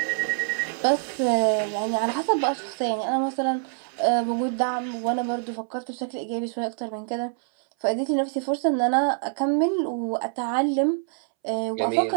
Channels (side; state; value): left; silent; 61 dB below the other